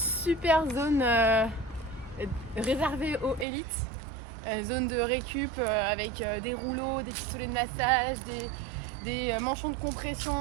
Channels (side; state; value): left; drops out; at 3.5 s